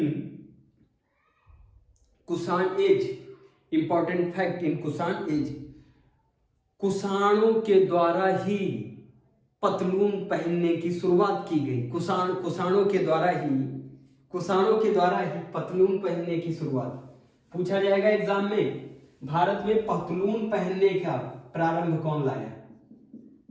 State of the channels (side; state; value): both; identical; correlation 1.00